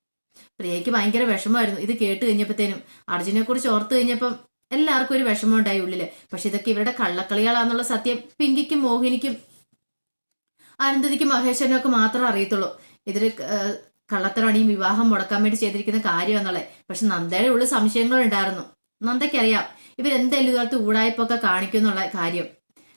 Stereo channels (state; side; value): inverted; both; correlation -1.00